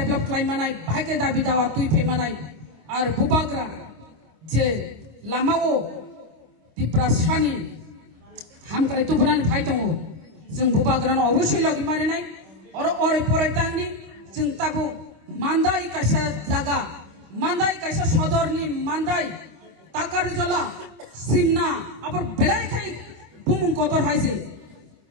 खालामनाय भाई के दाबि दावा तुइ फेमानाय और बुबाग्रा जे लामाओ दिप्रासानि हामक्राय तुबनानै फाय दङ जों बुबाग्रानो अबश्य लगे मारिनाय और ओरै परायतांनि जों ताबो मान्दाय कैसा जागा मान्दाय कैसा सदरनि मान्दाय ताकारजला सिमना आबर बेलाय खाय बुमुं कतर हायजे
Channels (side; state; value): left; late; 26 ms